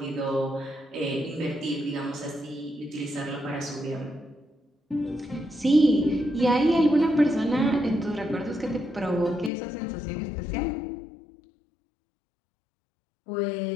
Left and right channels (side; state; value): right; drops out; at 9.5 s